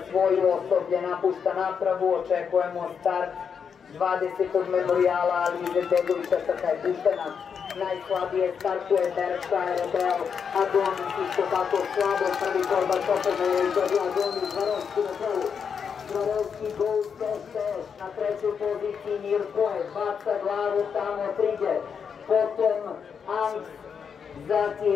svoju osoblje napušta napravu, očekujemo start 20. memorijala Alize Begovića, trka je puštena. Najslabije startuje Berkshire Rebel, Adonis isto tako slabo, prvi korba Čopene je izgledio Adonis, Zvarovski na prvu. Zvarovski Gold Dash na trećoj poziciji Mirkoje, baca glavu tamo Trigger, potom Angst,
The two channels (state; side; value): quieter; right; 6.7 dB